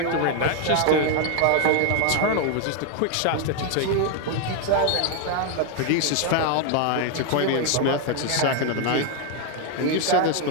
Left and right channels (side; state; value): both; different; correlation 0.01